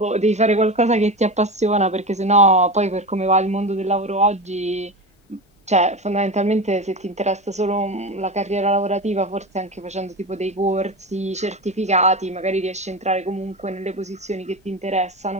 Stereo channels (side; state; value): both; normal; correlation 0.23